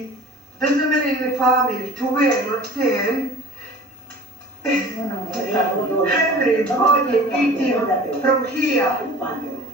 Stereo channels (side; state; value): both; normal; correlation 0.43